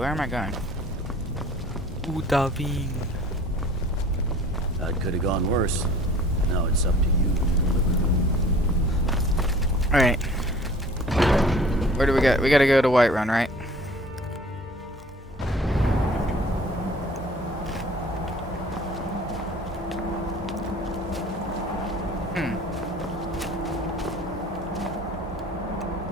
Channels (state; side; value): normal; both; correlation 0.48